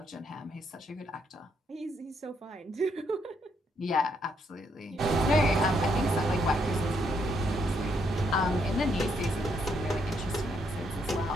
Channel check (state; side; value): normal; both; correlation 0.74